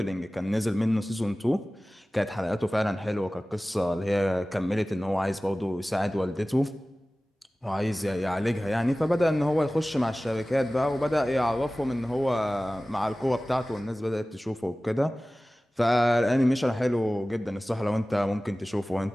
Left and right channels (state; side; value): normal; both; correlation 0.97